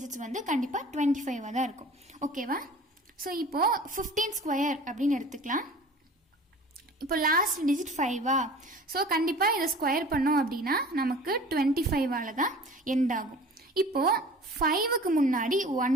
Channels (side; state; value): both; normal; correlation 0.43